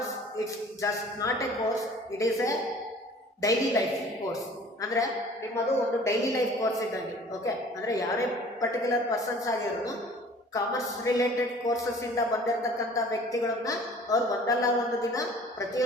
it's just not a course, it is a daily life course. ಅಂದ್ರೆ ನಿಮ್ಮದು ಒಂದು ಡೈಲಿ ಲೈಫ್ ಕೋರ್ಸ್ ಇದ್ದಂಗೆ. ಓಕೆ, ಅಂದ್ರೆ ಯಾರೇ ಪರ್ಟಿಕ್ಯುಲರ್ ಪರ್ಸನ್ಸ್ ಆಗಿರೋನು ಕಾಮರ್ಸ್ ರಿಲೇಟೆಡ್ ಕೋರ್ಸಸ್ ಇಂದ ಬಂದಿರತಕ್ಕಂಥ ವ್ಯಕ್ತಿಗಳನ್ನ ಅವ್ರು ಒಂದಲ್ಲ ಒಂದು ದಿನ,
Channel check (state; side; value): normal; both; correlation 0.49